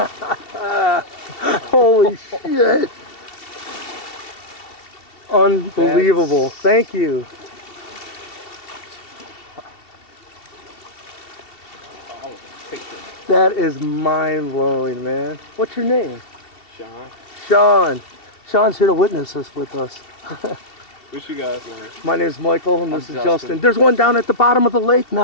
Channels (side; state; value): right; late; 2.7 ms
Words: Holy shit. Unbelievable. Thank you. That is mind-blowing, man. What's your name? Sean. Sean's here to witness this with us. What's you guys' name? My name's Michael, and this is Justin. There's one down at the bottom of the lake